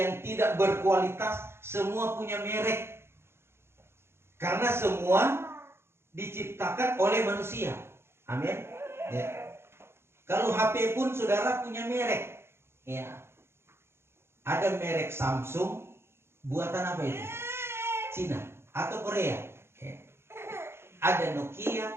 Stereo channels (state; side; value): late; left; 0.12 ms